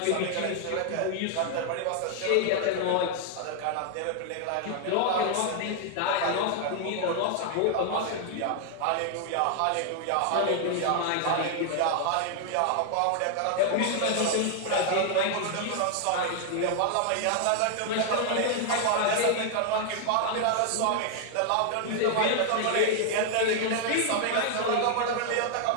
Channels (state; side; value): different; both; correlation 0.00